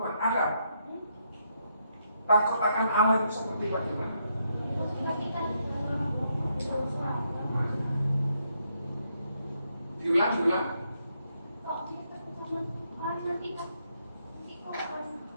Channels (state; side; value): inverted; both; correlation -0.77